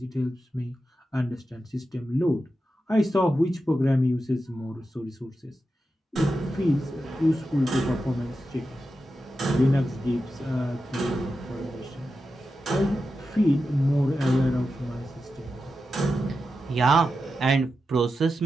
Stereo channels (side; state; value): both; normal; correlation 0.90